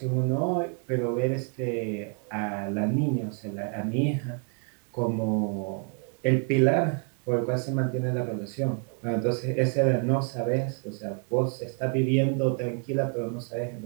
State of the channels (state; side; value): quieter; left; 39.5 dB